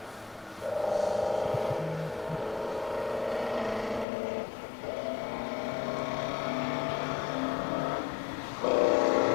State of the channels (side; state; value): right; drops out; at 4.0 s